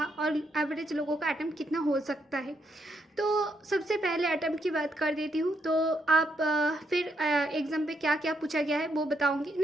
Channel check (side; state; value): both; normal; correlation 0.77